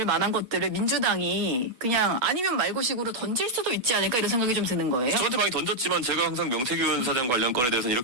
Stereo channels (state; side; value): late; left; 8.2 ms